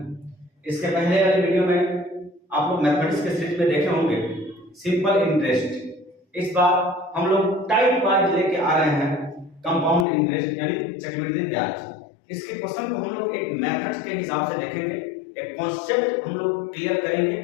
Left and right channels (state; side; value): drops out; right; at 10.1 s